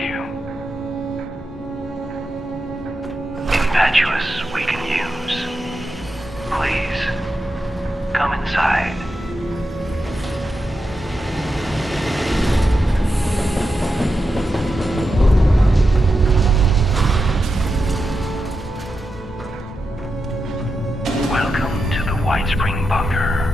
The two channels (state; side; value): normal; both; correlation 0.88